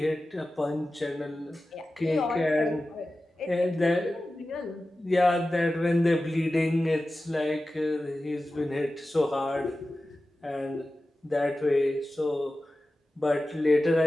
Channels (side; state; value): both; normal; correlation 0.95